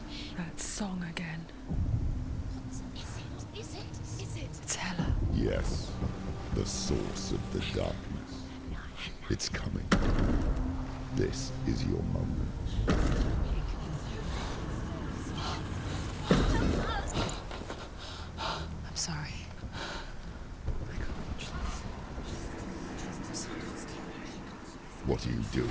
That song again. Is it? It's Hela. Yes, the source of the darkness. It's coming. This is your moment. I'm sorry. I can't watch this. What are you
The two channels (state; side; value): identical; both; correlation 1.00